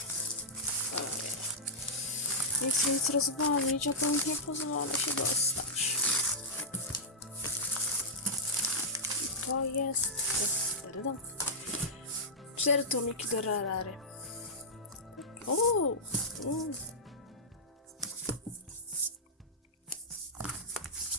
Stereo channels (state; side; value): normal; both; correlation -0.10